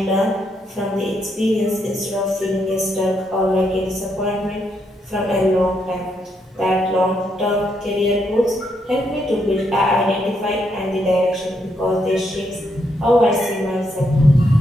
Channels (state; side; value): normal; both; correlation 0.78